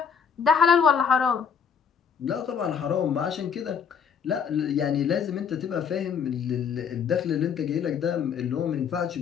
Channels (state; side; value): quieter; right; 6.9 dB